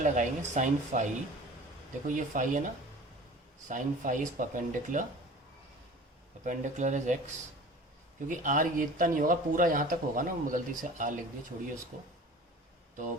साइन फाई। देखो ये फाई है ना, sine phi is perpendicular, perpendicular is x। क्योंकि r ये इतना नहीं होगा, पूरा यहाँ तक होगा ना, गलती से r लिख दिया, छोड़िए उसको। तो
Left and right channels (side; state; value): both; normal; correlation 0.42